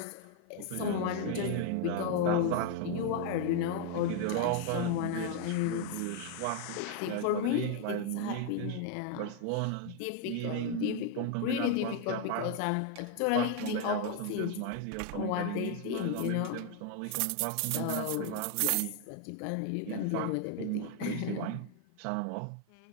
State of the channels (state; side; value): different; both; correlation 0.01